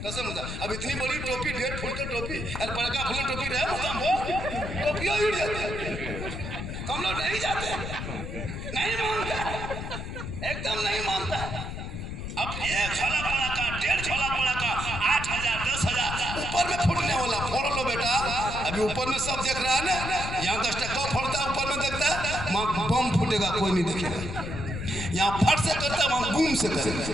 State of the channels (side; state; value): left; noise; rumble, 6 dB below the sound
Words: होता। अब इतनी बड़ी टोपी 1.5 फुट की टोपी और पटाखा फूल टोपी रहे टोपियाँ उड़ जाती, हम लोग नहीं जाते, नहीं मानता, एकदम नहीं मानता। अब 1 झोला पटाखा, 1.5 झोला पटाखा, 8000 10,000 ऊपर में फूटने वाला, फोड़ लो बेटा। अभी ऊपर में सब देख रहा है ना, यहाँ 10 टक्का फोड़ता है, ऊपर में देखता है वहाँ बम फूटेगा, कोई नहीं देखेगा। यहाँ फट से करता है, वहाँ गुम से